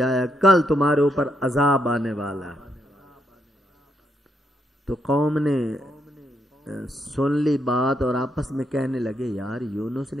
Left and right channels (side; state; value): both; normal; correlation 0.78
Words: کل تمہارے اوپر عذاب آنے والا ہے. تو قوم نے سن لی بات اور آپس میں کہنے لگے یار یونس